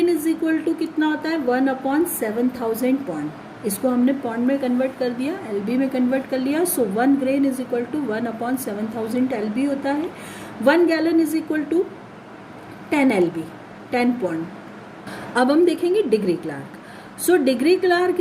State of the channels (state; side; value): identical; both; correlation 1.00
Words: इज इक्वल टू कितना होता है, 1 अपॉन 7000 पॉन्ड। इसको हमने पॉन्ड में कन्वर्ट कर दिया, LB में कन्वर्ट कर लिया। So 1 grain is equal to 1 upon 7000 LB होता है। 1 gallon is equal to 10 LB, 10 pound. अब हम देखेंगे degree Clark. So degree Clark